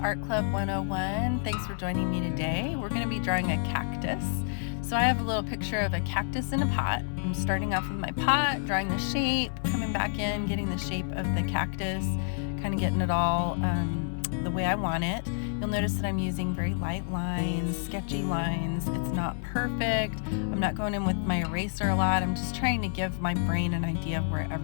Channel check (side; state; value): right; silent; 59 dB below the other